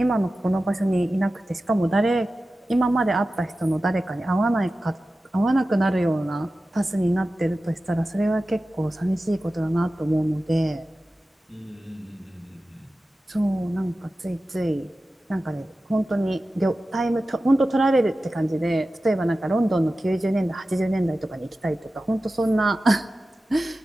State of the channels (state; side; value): normal; both; correlation 0.95